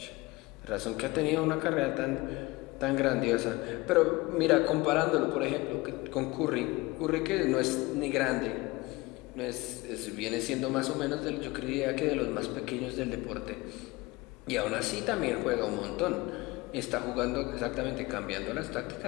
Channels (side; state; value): right; quieter; 22.3 dB